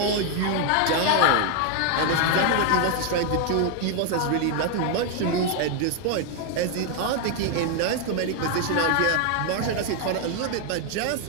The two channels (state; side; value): different; both; correlation 0.01